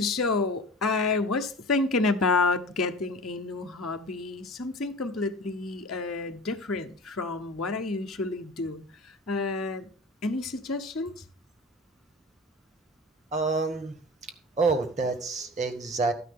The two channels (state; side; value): normal; both; correlation 0.36